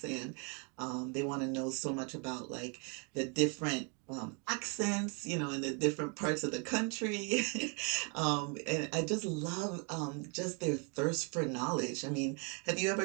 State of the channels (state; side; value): quieter; left; 36.1 dB